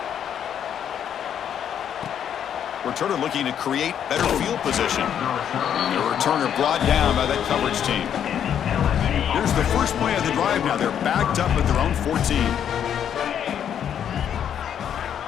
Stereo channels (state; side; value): quieter; right; 9.1 dB